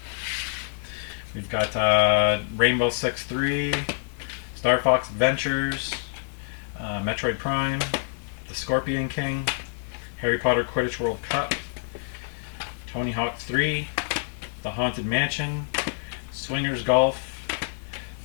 We've got Rainbow Six 3, Star Fox Adventures, Metroid Prime, The Scorpion King, Harry Potter Quidditch World Cup, Tony Hawk 3, The Haunted Mansion, Swingers Golf,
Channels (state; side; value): silent; right; digital silence